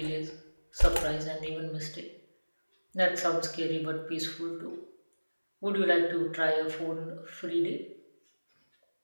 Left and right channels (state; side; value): inverted; both; correlation -1.00